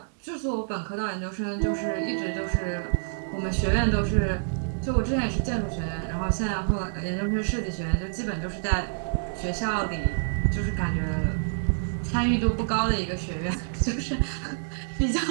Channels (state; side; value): silent; left; digital silence